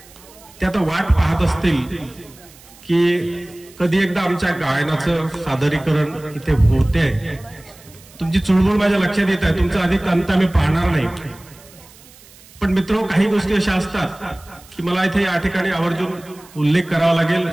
ते आता वाट पाहत असतील की कधी एकदा आमच्या गायनाचं सादरीकरण इथे होते. तुमची चुळबुळ माझ्या लक्षात येत आहे, तुमचा अधिक अंत आम्ही पाहणार नाही. पण मित्रो, काही गोष्टी अशा असतात की मला इथे या ठिकाणी आवर्जून उल्लेख करावा लागेल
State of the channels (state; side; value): noise; right; hiss, 24 dB below the sound